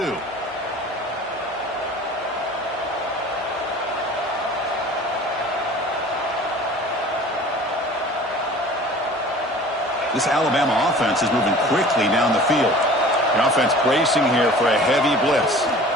This Alabama offense is moving quickly down the field. The offense bracing here for a heavy blitz.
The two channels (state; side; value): normal; both; correlation 0.44